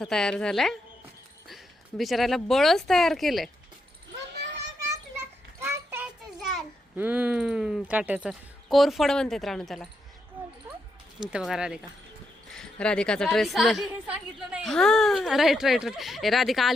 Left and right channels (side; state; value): both; normal; correlation 0.82